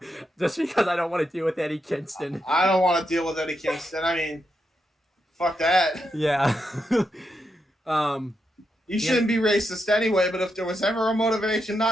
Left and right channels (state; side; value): normal; both; correlation 0.84